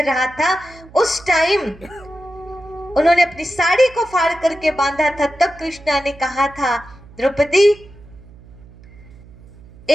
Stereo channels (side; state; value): right; noise; hum, 22 dB below the sound